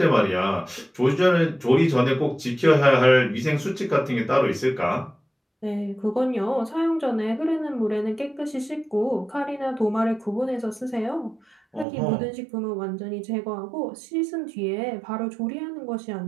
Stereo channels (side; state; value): left; drops out; at 11.9 s